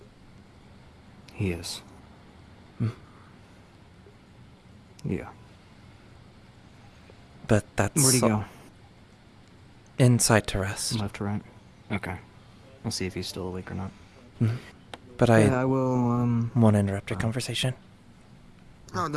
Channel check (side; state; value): both; identical; correlation 1.00